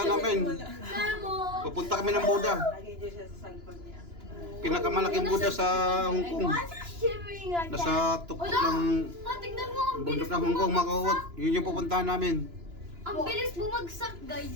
namin. Memo. Papunta kami ng Buda. Lagay dyan siya sa likod niya. Pinakamalaking Buda sa Hong Kong. Why is it shivering like that? Nasa tuktok ng Tignan mo, ang bundok ng Hong Kong, mga kawawat. Yun yung pupuntahan namin. Ang bilis bumagsak,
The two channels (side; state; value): left; late; 2.9 ms